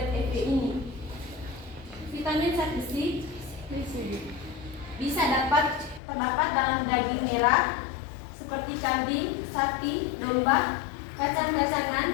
FB ini. Vitamin zat besi bisa terdapat dalam daging merah seperti kambing, sapi, domba,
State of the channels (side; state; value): right; drops out; at 6.0 s